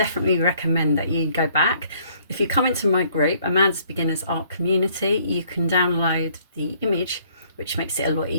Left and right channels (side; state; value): both; inverted; correlation -0.62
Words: recommend that you go back. If you come into my group, Amanda's Beginners Art Community, you can download the image, which makes it a lot